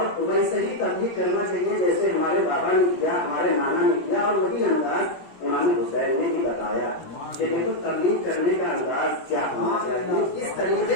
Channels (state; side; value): late; right; 17 ms